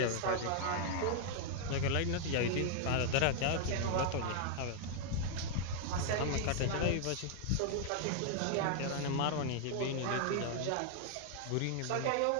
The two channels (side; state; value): both; different; correlation 0.00